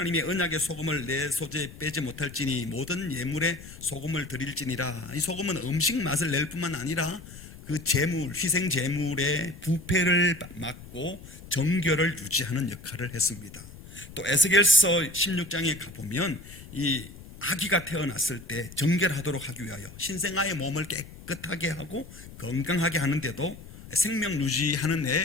언약의 소금을 내 소재에 빼지 못할지니 모든 예물에 소금을 드릴지니라. 이 소금은 음식 맛을 낼 뿐만 아니라 그 제물, 희생 제물의 부패를 막고 정결을 유지하는 역할을 했습니다. 또 에스겔서 16장에 가보면 이 아기가 태어났을 때 정결하도록 하기 위하여 신생아의 몸을 깨끗하게 하고 건강하게 하는데도 생명 유지하는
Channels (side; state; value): left; noise; rumble, 17 dB below the sound